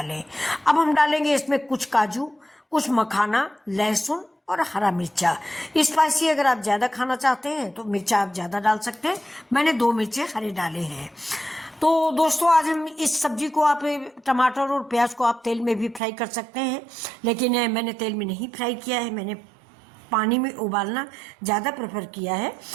अब हम डालेंगे इसमें कुछ काजू, कुछ मखाना, लहसुन और हरा मिर्चा। स्पाइसी अगर आप ज़्यादा खाना चाहते हैं तो मिर्चा आप ज़्यादा डाल सकते हैं। मैंने 2 मिर्चे हरे डाले हैं। तो दोस्तों, आज हम इस सब्जी को आप टमाटर और प्याज को आप तेल में भी फ्राई कर सकते हैं, लेकिन मैंने तेल में नहीं फ्राई किया है। मैंने पानी में उबालना ज़्यादा प्रेफर किया है,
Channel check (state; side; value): drops out; left; at 16.0 s